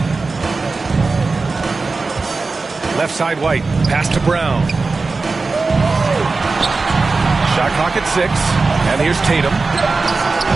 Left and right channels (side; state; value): left; quieter; 3.9 dB